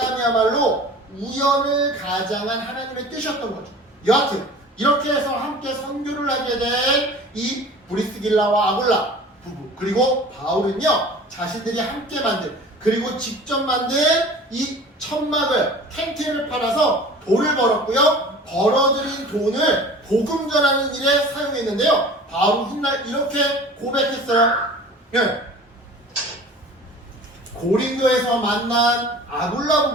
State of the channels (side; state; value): both; normal; correlation 0.42